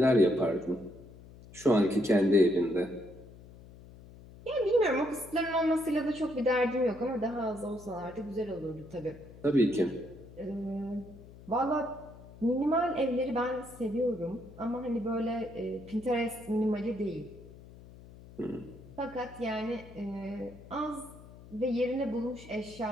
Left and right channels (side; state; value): left; noise; hum, 19 dB below the sound